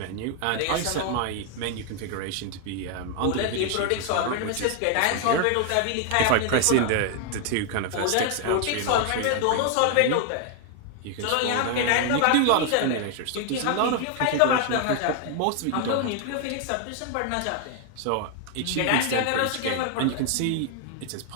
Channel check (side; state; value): both; different; correlation 0.00